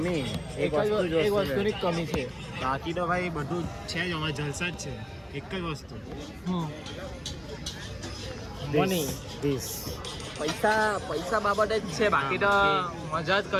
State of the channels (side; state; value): both; identical; correlation 1.00